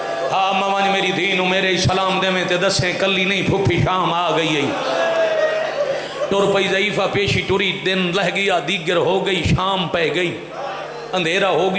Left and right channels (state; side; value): identical; both; correlation 1.00